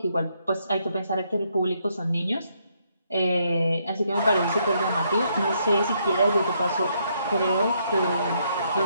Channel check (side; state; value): both; inverted; correlation -0.74